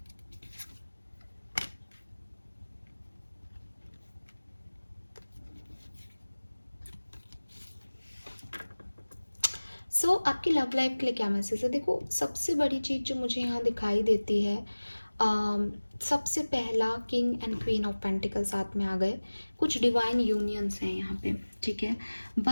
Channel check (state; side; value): inverted; both; correlation -1.00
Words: सो आपकी love life के लिए क्या message है? देखो, सबसे बड़ी चीज़ जो मुझे यहाँ दिखाई देती है, सबसे पहला king and queen of pentacle साथ में आ गए, कुछ डिवाइन यूनियंस हैं यहाँ पे, ठीक है।